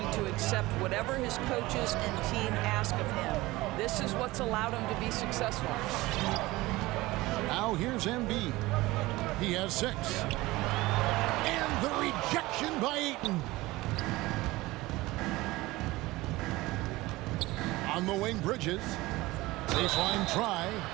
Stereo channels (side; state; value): left; quieter; 19.7 dB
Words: to accept whatever his coaches and team ask of him. This is what's allowed him to be successful. Now here's Embiid. He has 6. And the rejection by Ayton. On the wing, Bridges. Baseline try.